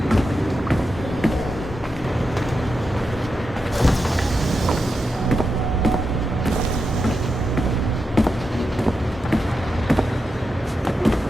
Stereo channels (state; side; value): normal; both; correlation 0.88